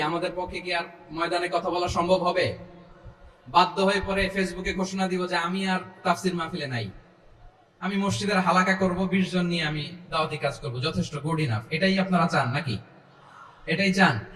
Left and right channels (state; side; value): identical; both; correlation 1.00